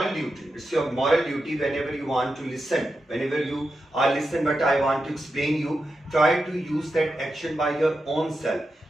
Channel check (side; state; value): both; normal; correlation 0.89